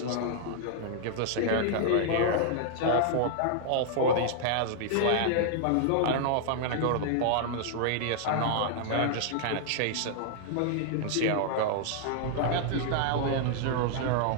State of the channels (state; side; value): different; both; correlation -0.01